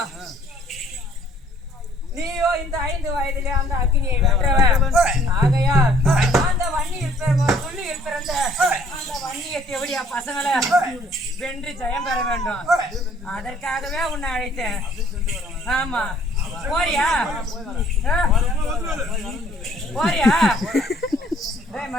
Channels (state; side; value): normal; both; correlation 0.59